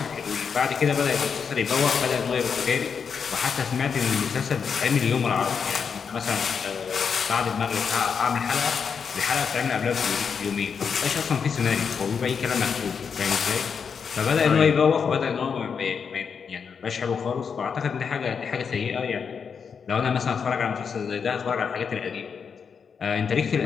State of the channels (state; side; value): quieter; right; 6.3 dB